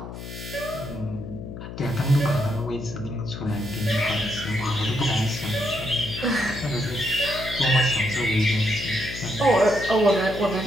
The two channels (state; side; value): noise; left; hum, 10 dB below the sound